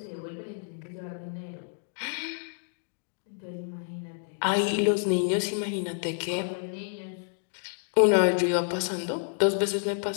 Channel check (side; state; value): right; silent; digital silence